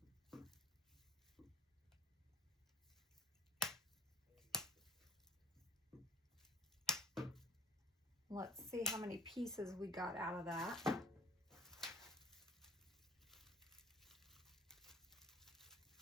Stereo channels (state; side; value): normal; both; correlation 0.45